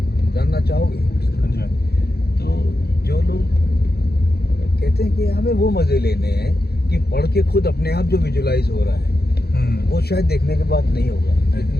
चाहोगे? तो जो लोग कहते हैं कि हमें वो मज़े लेने हैं कि पढ़ के खुद अपने आप जो विजुलाइज हो रहा है, वो शायद देखने के बाद नहीं होगा।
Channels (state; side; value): late; right; 0.46 ms